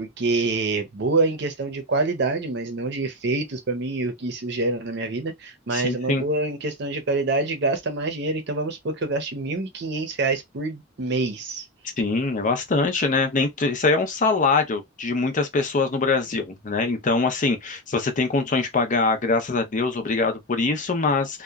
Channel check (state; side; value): normal; both; correlation 0.14